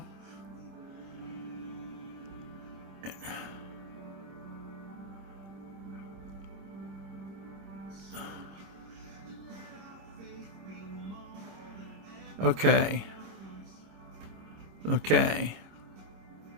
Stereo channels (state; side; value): late; left; 26 ms